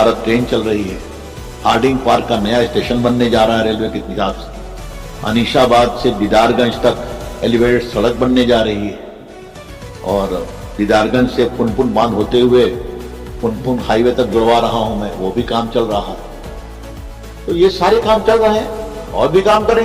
ट्रेन चल रही है, हार्डिंग पार्क का नया स्टेशन बनने जा रहा है रेलवे के हिसाब से, अनीशाबाद से दीदारगंज तक एलिवेटेड सड़क बनने जा रही है, और दीदारगंज से पुनपुन बांध होते हुए पुनपुन हाईवे तक जुड़वा रहा हूं मैं, वो भी काम चल रहा है। तो ये सारे काम चल रहे हैं और भी काम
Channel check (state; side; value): identical; both; correlation 1.00